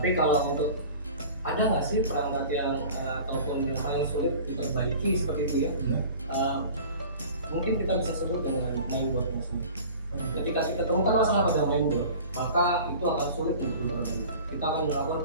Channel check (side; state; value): both; inverted; correlation -0.41